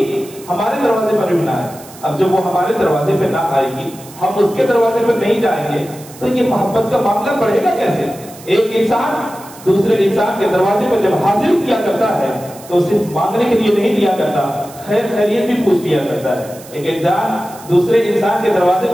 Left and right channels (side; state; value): right; noise; hiss, 19 dB below the sound